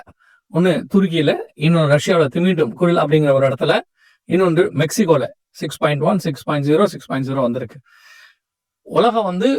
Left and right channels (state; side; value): identical; both; correlation 1.00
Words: ஒண்ணு துருக்கியில, இன்னொன்று ரஷ்யாவோட திமிட்டும் குரில் அப்படிங்கிற ஒரு இடத்துல, இன்னொன்று மெக்சிகோல 6.1, 6.0, 6.0 வந்திருக்கு. உலகம்